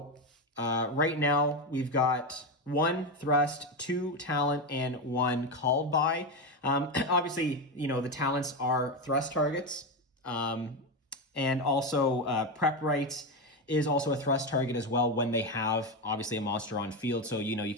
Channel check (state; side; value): normal; both; correlation 0.12